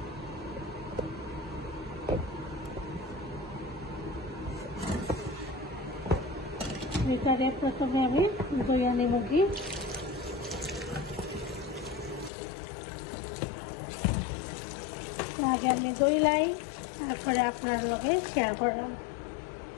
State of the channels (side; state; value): right; drops out; at 12.3 s